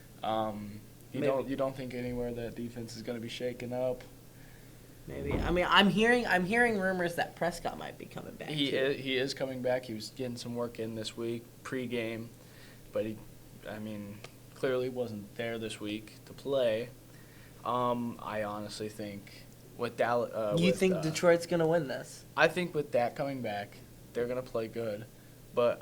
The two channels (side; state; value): both; identical; correlation 1.00